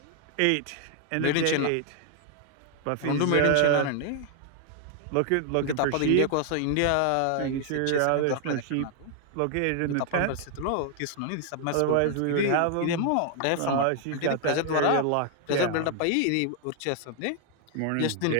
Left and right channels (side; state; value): both; different; correlation 0.00